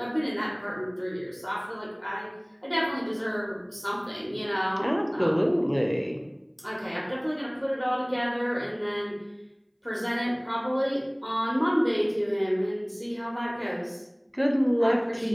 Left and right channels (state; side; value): identical; both; correlation 1.00